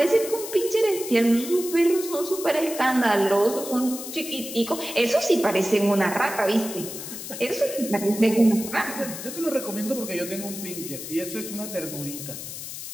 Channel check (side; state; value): left; noise; hiss, 9 dB below the sound